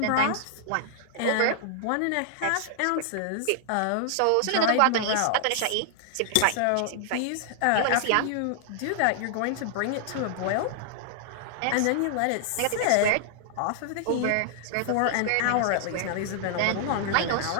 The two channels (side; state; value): both; different; correlation -0.01